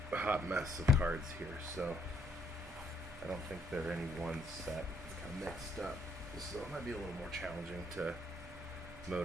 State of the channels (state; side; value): normal; both; correlation 0.69